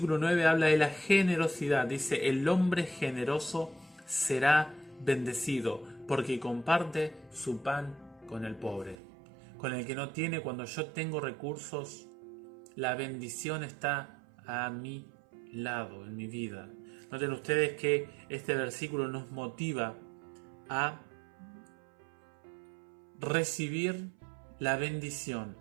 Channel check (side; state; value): left; drops out; at 9.0 s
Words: 9 habla de la generosidad. Dice: el hombre generoso será bendecido, porque comparte su pan con el pobre. Con el que no tiene. Cuando yo tengo recursos, la bendición está a mi lado, en mi vida. Noten ustedes que este versículo nos motiva a recibir la bendición,